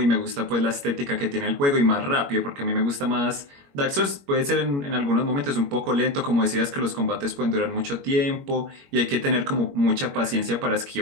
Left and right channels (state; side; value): late; left; 21 ms